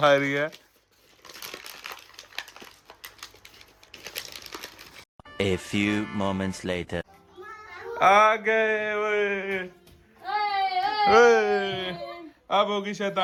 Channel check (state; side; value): identical; both; correlation 1.00